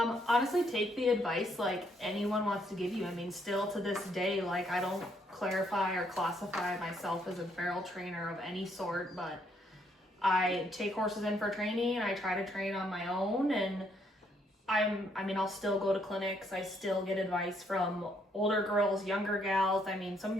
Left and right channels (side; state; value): both; normal; correlation 0.71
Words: take the advice like anyone wants to give you. I mean, still to this day, like, I don't clarify or classify myself as a barrel trainer of any sort, but I take horses in for training and I try to train on my own, and I'll still go to clinics. I still get advice from older girls, younger gals. I mean, some of